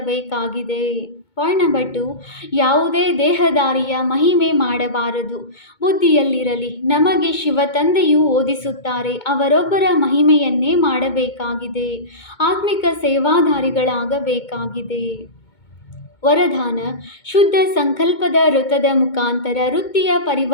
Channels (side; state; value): right; late; 2.2 ms